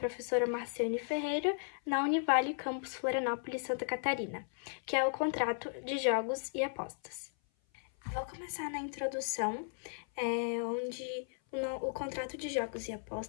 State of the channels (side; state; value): right; silent; 54 dB below the other